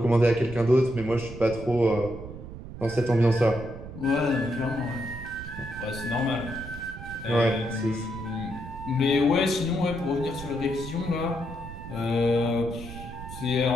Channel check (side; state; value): right; noise; rumble, 12 dB below the sound